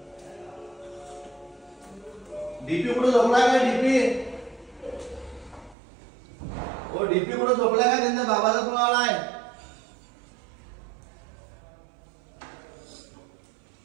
डीपी कुठं झोपलाय काय डीपी ओ डीपी कुठं झोपलाय काय त्यांच्या बाबाचा फोन आलाय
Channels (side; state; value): left; drops out; at 5.8 s